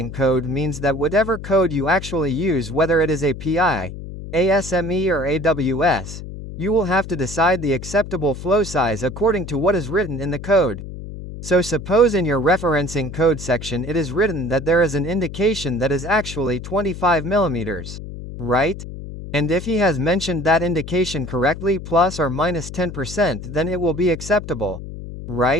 code means that whatever code you actually use, whether it is API, ASME or AWS, you will have to decide the acceptable flow size according to what is written in the code. So suppose in your referencing code section it is written that there is an indication that is actually 25 millimeters. Right? And if he has mentioned that indication correctly plus or minus 10%, then it will be acceptable.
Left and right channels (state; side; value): noise; left; hum, 10 dB below the sound